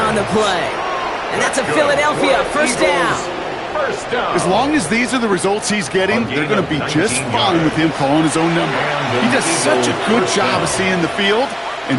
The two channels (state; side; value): identical; both; correlation 1.00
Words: on the play. And that's a Philadelphia 1st down. As long as these are the results he's getting, they're going to be just fine with him calling his own number. He does such a good job of seeing the field